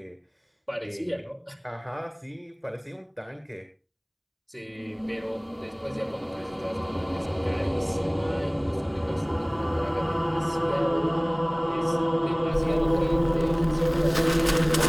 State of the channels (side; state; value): both; identical; correlation 1.00